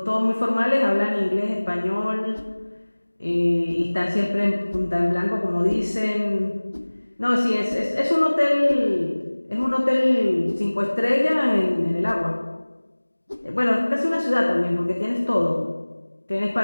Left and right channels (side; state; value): both; inverted; correlation -1.00